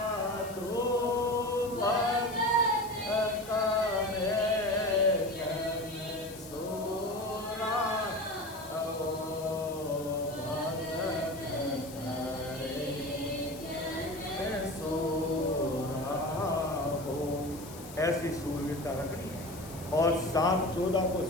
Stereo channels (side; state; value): left; noise; hiss, 16 dB below the sound